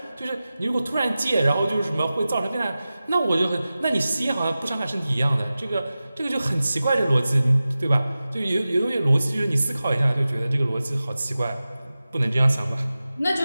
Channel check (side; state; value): both; inverted; correlation -0.95